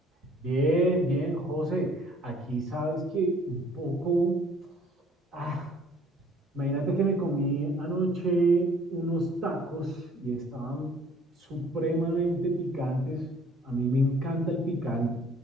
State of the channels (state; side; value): normal; both; correlation 0.57